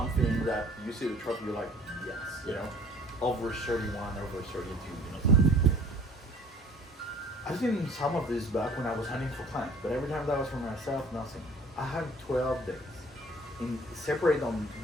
that you see the trophy, you're like, yes, you know? Over 31, over 32, you know, something. I've seen some of this back when I was hunting for clients, but every time that was for myself, nothing. I had 12 days, separate on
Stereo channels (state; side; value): normal; both; correlation 0.52